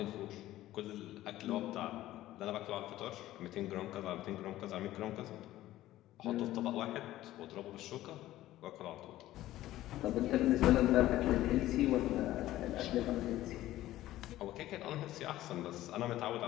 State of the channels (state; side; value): quieter; right; 14.9 dB